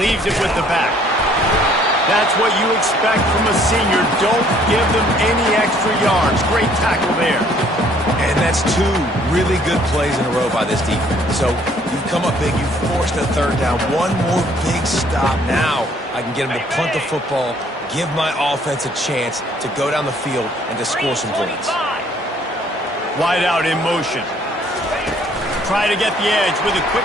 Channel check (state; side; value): normal; both; correlation 0.61